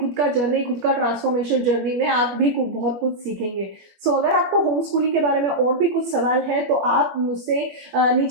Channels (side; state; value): left; late; 21 ms